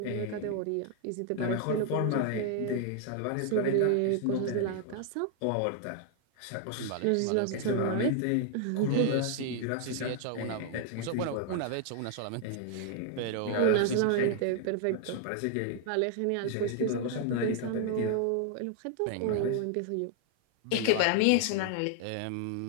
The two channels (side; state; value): both; different; correlation 0.00